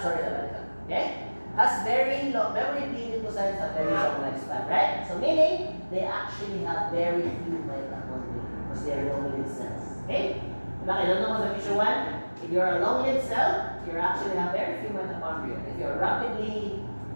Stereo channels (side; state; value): both; inverted; correlation -1.00